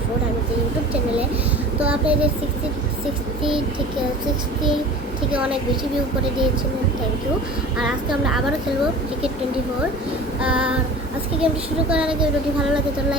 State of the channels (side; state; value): both; normal; correlation 0.40